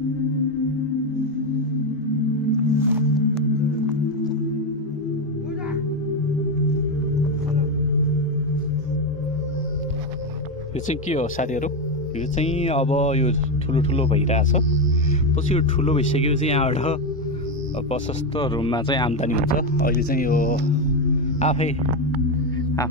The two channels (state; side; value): normal; both; correlation 0.10